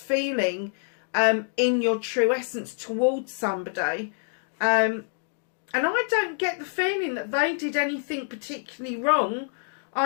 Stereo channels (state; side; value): silent; right; digital silence